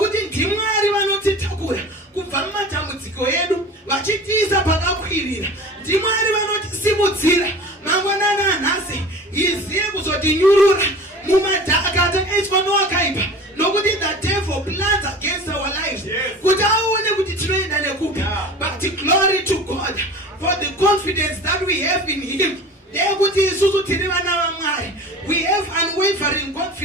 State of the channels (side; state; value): both; normal; correlation 0.38